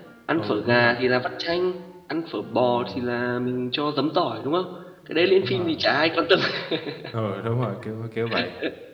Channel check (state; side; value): identical; both; correlation 1.00